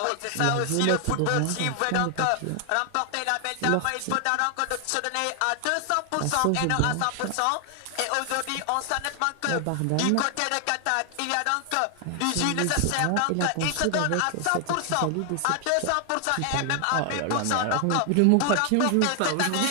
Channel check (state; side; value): different; both; correlation 0.00